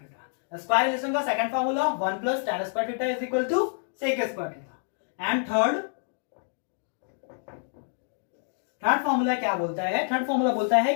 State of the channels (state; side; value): silent; right; digital silence